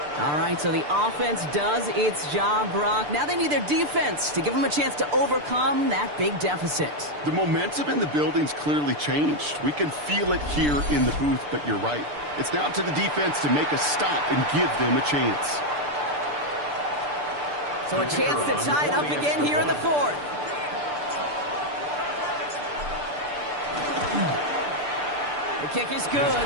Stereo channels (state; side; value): late; left; 6.8 ms